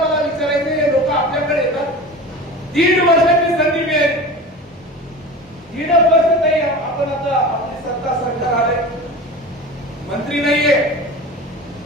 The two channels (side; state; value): both; normal; correlation 0.34